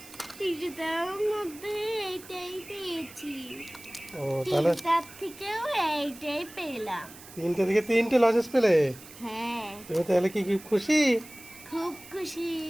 তৃতীয়টার মধ্যে এইটাই পেয়েছি। ও, তাহলে তিনটার থেকেও এইটাই পেলাম। 3টে থেকে 3টে লজেন্স পেলে। হ্যাঁ, তুমি তাহলে কি খুশি? খুব খুশি।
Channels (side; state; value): right; noise; hiss, 18 dB below the sound